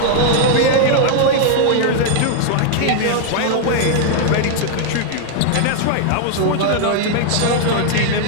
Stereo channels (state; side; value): different; both; correlation 0.00